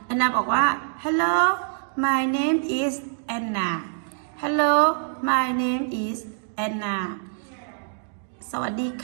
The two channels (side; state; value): left; silent; digital silence